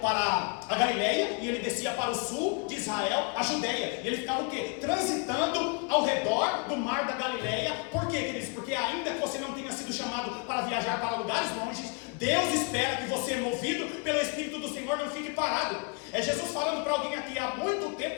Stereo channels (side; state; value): right; quieter; 33.7 dB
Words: para a Galileia e ele descia para o sul de Israel, a Judéia. E ele ficava o quê? Transitando ao redor do mar da Galileia. Por quê, queridos? Porque ainda que você não tenha sido chamado para viajar para lugares longes, Deus espera que você, movido pelo Espírito do Senhor, não fique parado. É Jesus falando para alguém aqui: há muito